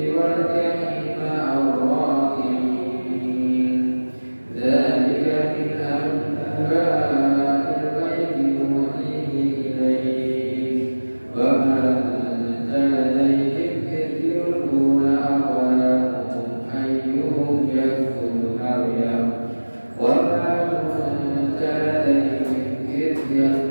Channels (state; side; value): inverted; both; correlation -1.00